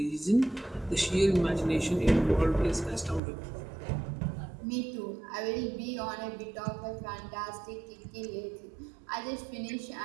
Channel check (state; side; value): drops out; left; at 3.2 s